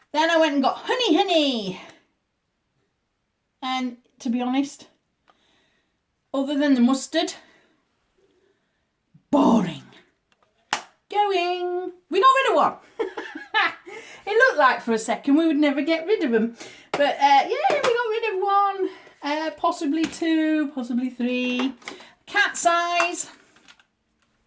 Then I went and got Honey. And to be honest, other than the mustard, boring. Going. We got rid of one. It looked like for a second we would never get rid of them. But yeah, we got rid of one. Possibly 2, possibly 3. Cat size.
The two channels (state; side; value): identical; both; correlation 1.00